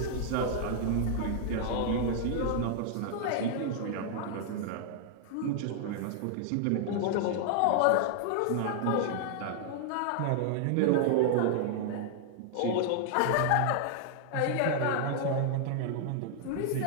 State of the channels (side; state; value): both; different; correlation -0.01